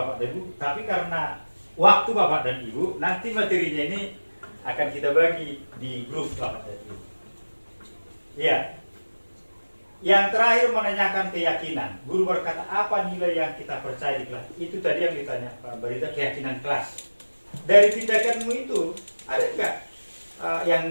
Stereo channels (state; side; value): inverted; both; correlation -1.00